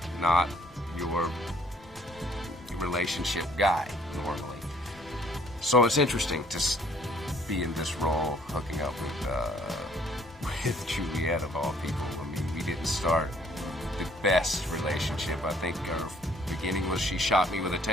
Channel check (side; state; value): both; normal; correlation 0.61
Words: not your relationship guy, normally. So it's interesting to be in this role, hooking up with Juliet of all people. I mean, we didn't start the best relationship. I think our beginning was she shot me with a